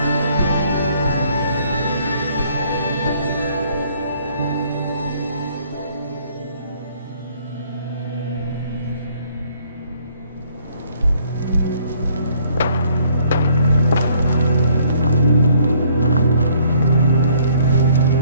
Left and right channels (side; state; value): both; inverted; correlation -0.62